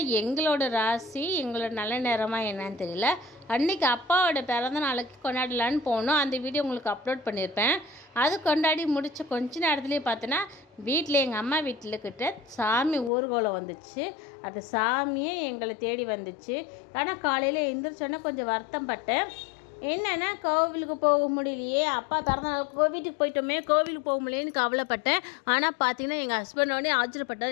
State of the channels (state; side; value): drops out; right; at 13.1 s